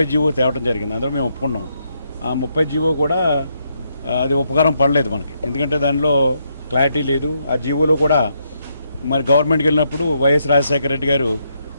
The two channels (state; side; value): inverted; both; correlation -0.78